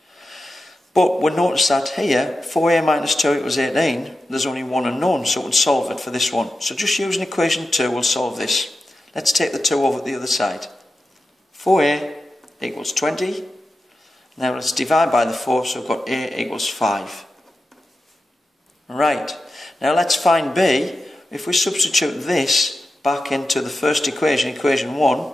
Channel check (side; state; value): both; normal; correlation 0.91